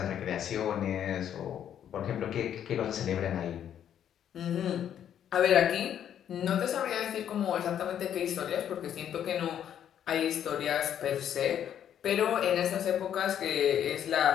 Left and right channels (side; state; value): right; quieter; 9.8 dB